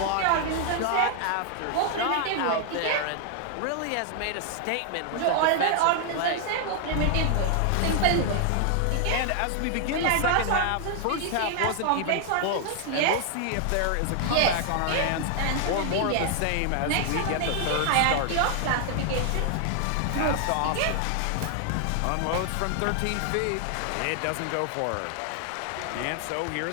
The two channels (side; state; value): both; different; correlation 0.00